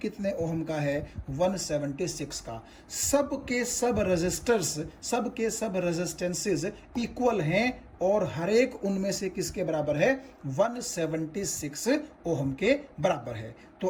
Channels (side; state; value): both; identical; correlation 1.00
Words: ओम का है? 176 का। सब के सब रजिस्टर्स, सब के सब रेजिस्टेंसेस इक्वल हैं और हर एक उनमें से किसके बराबर है? 176 ओम के बराबर है। तो